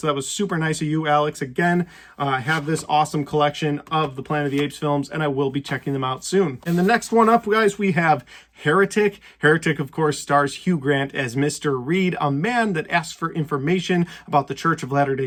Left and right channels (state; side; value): identical; both; correlation 1.00